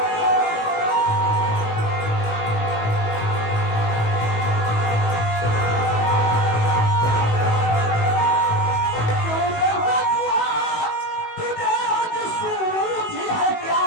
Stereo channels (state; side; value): late; right; 18 ms